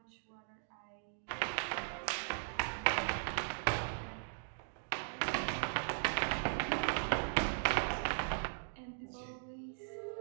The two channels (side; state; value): left; silent; digital silence